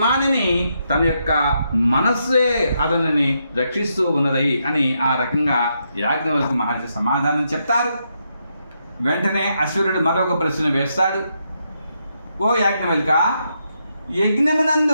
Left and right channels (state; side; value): inverted; both; correlation -0.80